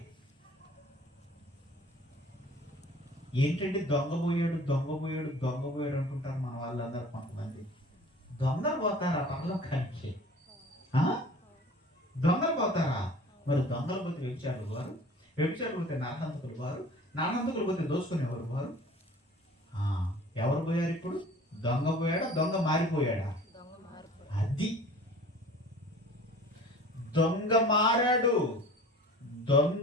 ఏంటంటే దొంగపోయాడు దొంగపోయాడు దొంగపోయాడు అంటుంటారు మన వాళ్ళందరూ. కొంతమంది దొంగలు పోతారా పరలోకానికి? దొంగలు పోతారా? మరి దొంగలు పోతే వ్యభిచారులు వారు, వ్యభిచారులు పోతే నాటంతకులు వారు, నాటంతకులు పోతే దోసుకునేవారు వారు. ఎవరు పోయారు ఇప్పుడు? దొంగ పోయాడా? దొంగ మారిపోయాడా? అది దొంగ మారాడు,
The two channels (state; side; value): normal; both; correlation 0.45